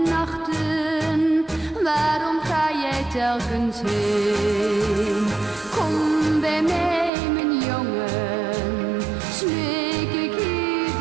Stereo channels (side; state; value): left; drops out; at 7.1 s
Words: nachten. Waarom ga jij telkens heen? Kom bij mij, mijn jongen, smeek ik